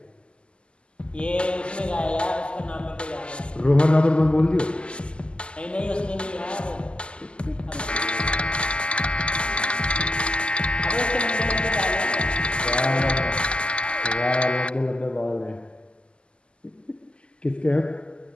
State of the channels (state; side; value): late; right; 0.051 ms